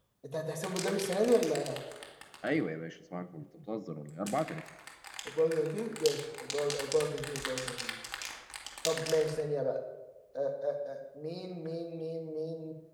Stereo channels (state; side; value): identical; both; correlation 1.00